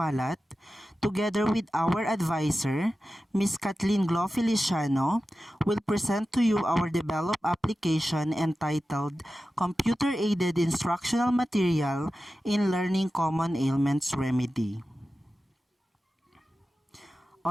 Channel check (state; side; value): normal; both; correlation 0.94